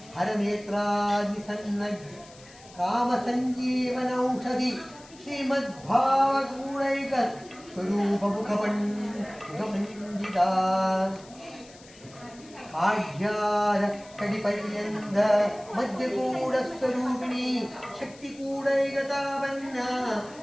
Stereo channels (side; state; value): left; noise; hiss, 22 dB below the sound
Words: ಹರನೇತ್ರಾದಿ ಸನ್ನಗ್ ಕಾಮ ಸಂಜೀವನೌಷಧಿ ಶ್ರೀಮದ್ಭಾವಗೂಢೈಕ ಸ್ವರೂಪ ಮುಖಪಂಡಿತ ಆಢ್ಯಾರ ಕಡಿಪರ್ಯಂತ ಮಧ್ಯಕೂಡ ಸ್ವರೂಪಿಣಿ ಶಕ್ತಿಕೂಡೈಗತಾವನ್ನ